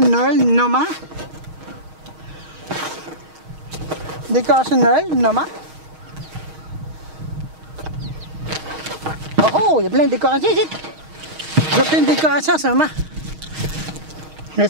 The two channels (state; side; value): late; left; 6.4 ms